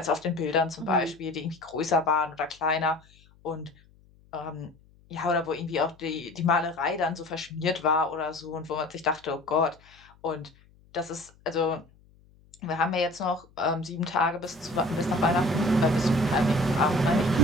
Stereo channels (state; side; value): noise; left; hum, 28 dB below the sound